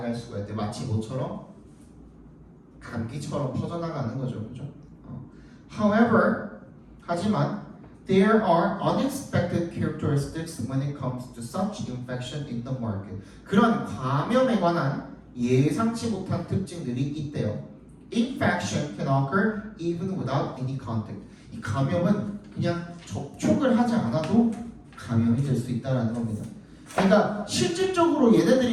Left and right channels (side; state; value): both; identical; correlation 1.00